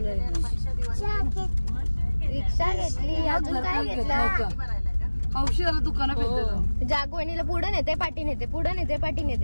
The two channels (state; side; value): inverted; both; correlation -1.00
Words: घेतली. अजून काय घेतलं? औषधाला दुकानात जागवणीला पुढे नेते पाठी नेते, पुढे नेते पाठी